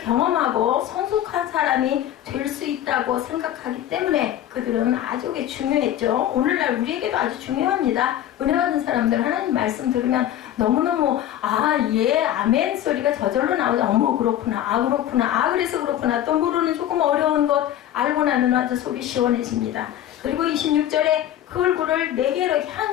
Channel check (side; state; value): right; quieter; 11.8 dB